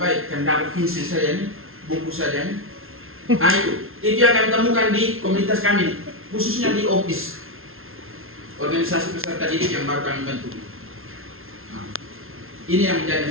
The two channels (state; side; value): late; left; 0.61 ms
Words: kan dapat pensil saja nih, buku saja nih. Nah itu yang kami temukan di komunitas kami, khususnya di OPIS, organisasi peserta didik yang baru kami bentuk. Nah, ini yang